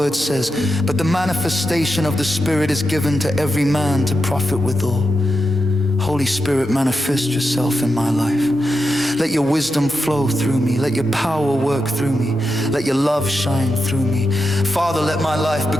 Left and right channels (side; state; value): both; normal; correlation 0.88